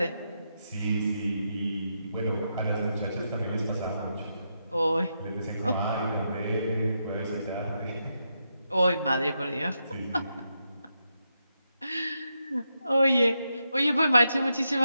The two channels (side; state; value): both; inverted; correlation -0.84